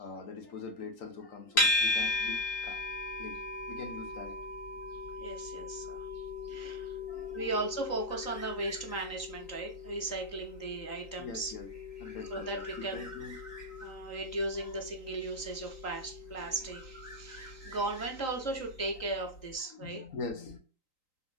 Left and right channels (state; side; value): late; right; 3.8 ms